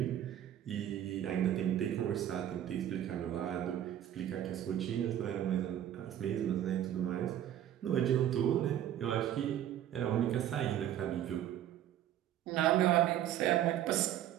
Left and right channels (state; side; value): quieter; left; 11.4 dB